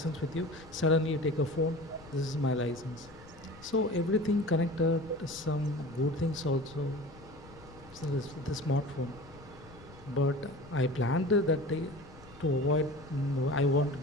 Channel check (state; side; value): noise; left; rumble, 21 dB below the sound